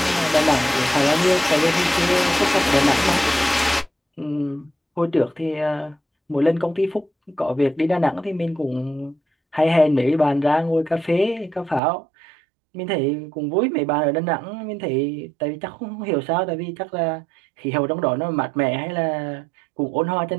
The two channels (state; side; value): drops out; left; at 11.8 s